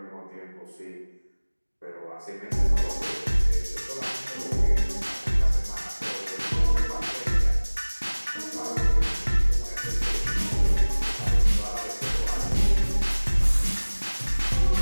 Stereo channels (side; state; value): both; inverted; correlation -1.00